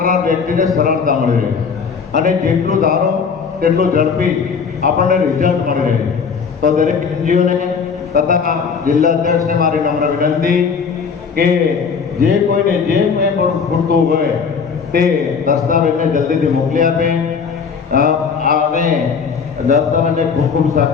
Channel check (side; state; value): right; quieter; 5.9 dB